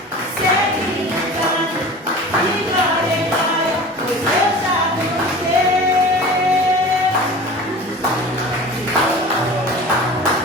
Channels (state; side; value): normal; both; correlation 0.38